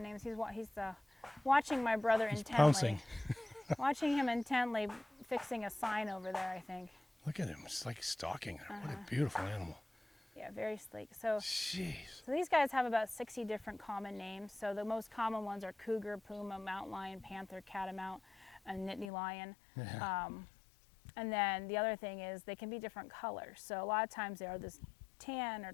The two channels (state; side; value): drops out; right; at 19.1 s